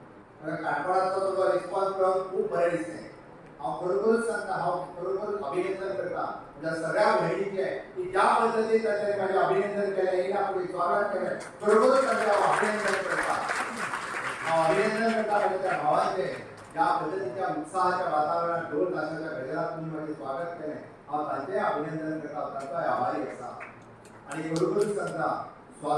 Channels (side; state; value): both; identical; correlation 1.00